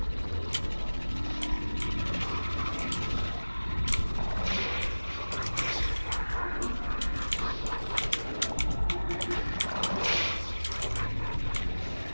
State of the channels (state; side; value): inverted; both; correlation -1.00